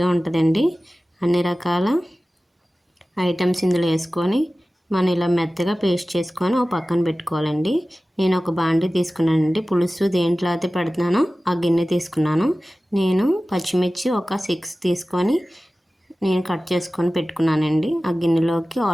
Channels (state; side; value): normal; both; correlation 0.96